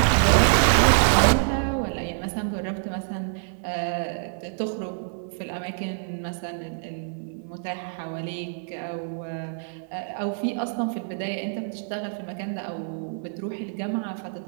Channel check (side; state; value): left; silent; 61 dB below the other